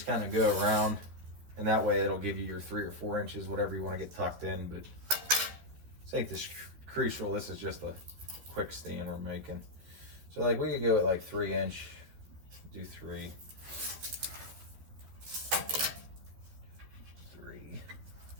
kind of go around. And that way it'll give you your 3 or 4 inches, whatever you want to get tucked in. But this ain't this crucial. This is just a quick stand we're making. So like we could go at like 3 inch, do 3. 3.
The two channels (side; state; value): left; late; 13 ms